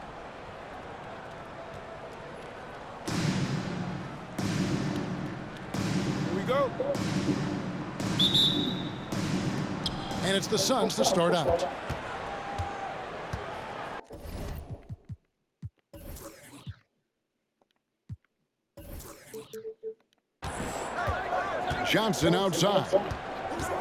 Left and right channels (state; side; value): identical; both; correlation 1.00